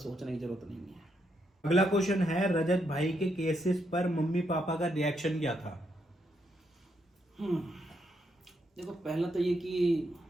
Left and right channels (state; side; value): normal; both; correlation 0.78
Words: सोचने की जरूरत नहीं है। अगला क्वेश्चन है, रजत भाई के केसेस पर मम्मी पापा का रिएक्शन क्या था? देखो, पहला तो ये कि